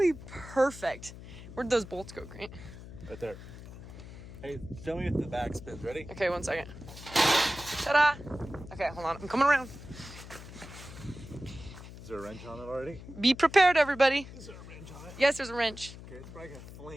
perfect. Where'd those bolts go, Grant? Right there. Hey, show me if the back spins. Ready? Okay, 1 second. Ta-da! Okay, hold on. I'm coming around. Is there a wrench on it already? Be prepared, everybody. Is there a wrench on it? Yes, there's a wrench. Okay, it's probably gonna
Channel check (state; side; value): noise; left; hum, 14 dB below the sound